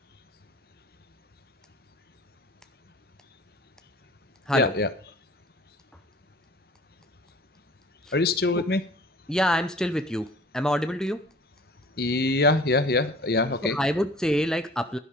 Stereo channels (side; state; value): both; normal; correlation 0.47